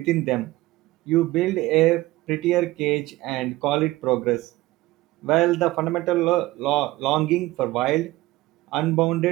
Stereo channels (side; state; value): left; quieter; 18.4 dB